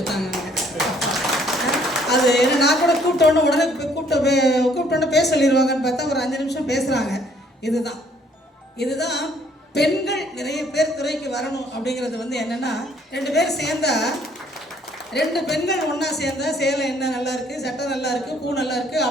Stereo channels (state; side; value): normal; both; correlation 0.62